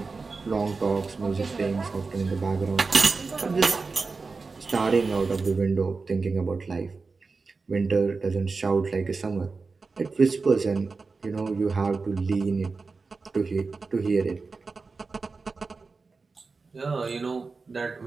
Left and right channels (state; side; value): quieter; left; 4.2 dB